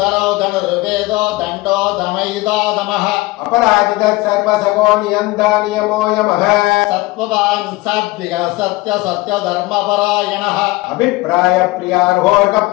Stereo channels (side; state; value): right; quieter; 20.9 dB